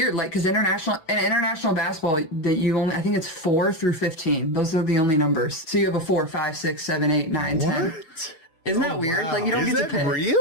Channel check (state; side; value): late; right; 6.1 ms